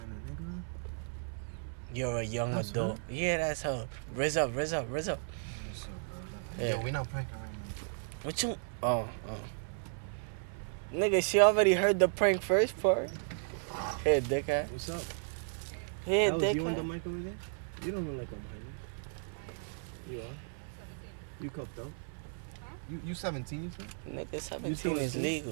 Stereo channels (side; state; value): left; silent; 55 dB below the other